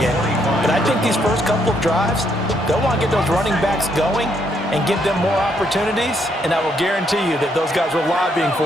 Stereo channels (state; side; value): normal; both; correlation 0.73